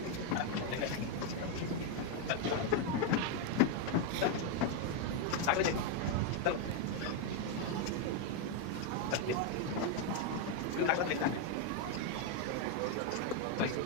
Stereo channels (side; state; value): both; different; correlation 0.01